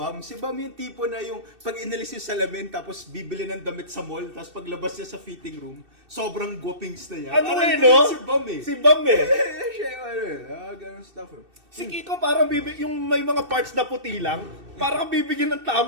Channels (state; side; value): late; left; 2.6 ms